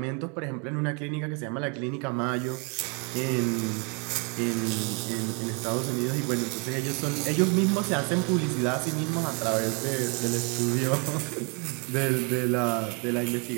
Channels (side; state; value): left; quieter; 34.2 dB